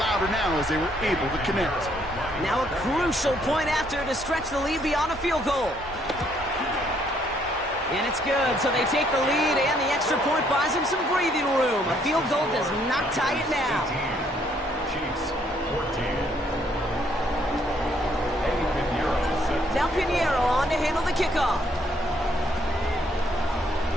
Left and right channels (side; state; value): both; normal; correlation 0.68